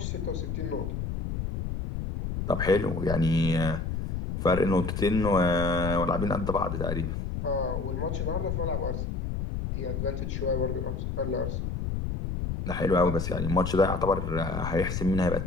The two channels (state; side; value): noise; left; rumble, 3 dB below the sound